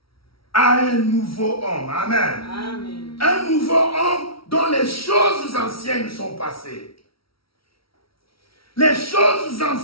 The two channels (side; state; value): right; late; 0.75 ms